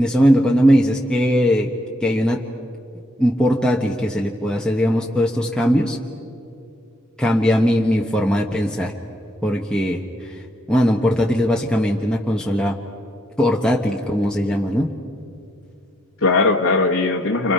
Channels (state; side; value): normal; both; correlation 0.74